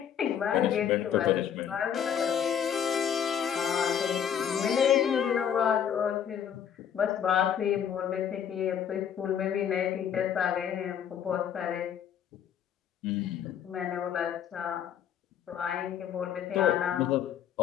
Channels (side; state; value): right; quieter; 8.7 dB